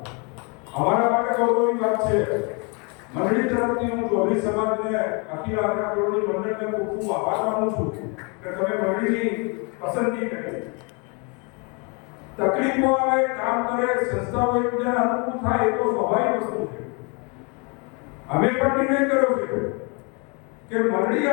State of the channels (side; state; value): right; quieter; 32.9 dB